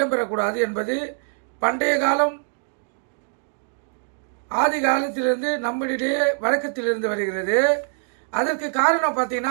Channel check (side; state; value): left; silent; 63 dB below the other